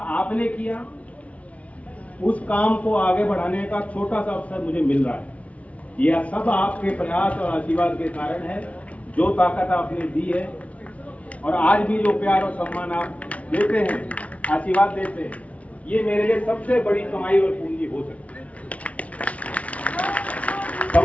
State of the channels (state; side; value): late; right; 0.066 ms